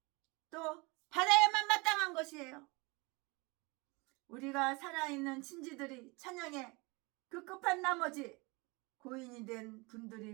또 받아야만 마땅한 것이에요. 우리가 살아있는 친지들이 찬양에 급급한 나머지 고인이 된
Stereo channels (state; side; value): quieter; left; 26.7 dB